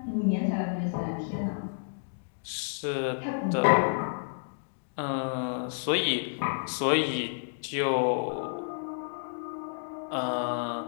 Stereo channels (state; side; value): silent; right; digital silence